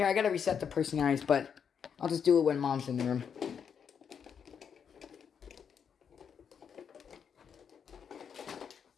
I gotta reset the personalities, but I'll just do it when Mom's in the room.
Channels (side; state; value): right; quieter; 7.3 dB